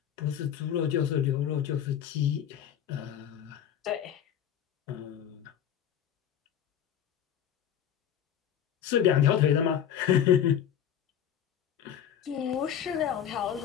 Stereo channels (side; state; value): right; quieter; 9.5 dB